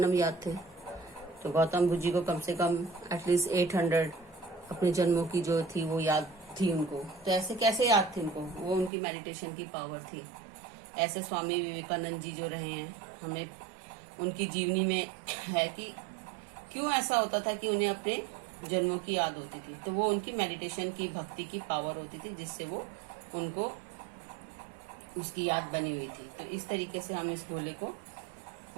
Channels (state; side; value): drops out; left; at 8.9 s